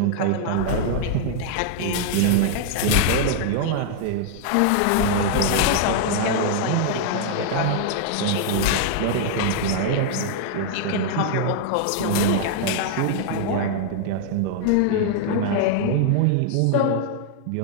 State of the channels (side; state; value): both; different; correlation -0.01